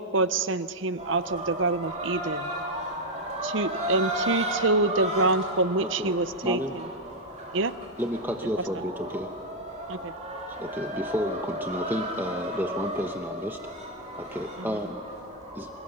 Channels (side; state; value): both; normal; correlation 0.00